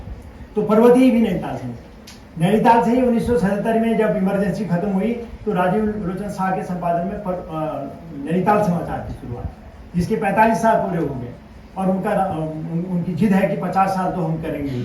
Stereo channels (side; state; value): both; identical; correlation 1.00